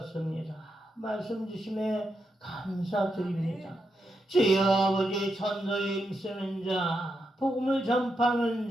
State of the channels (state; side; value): normal; both; correlation 0.84